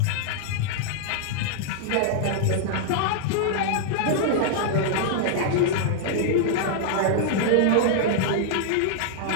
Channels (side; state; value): both; different; correlation -0.01